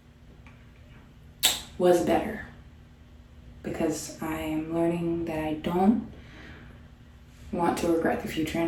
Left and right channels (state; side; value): identical; both; correlation 1.00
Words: was better because I am learning that I don't want to regret the future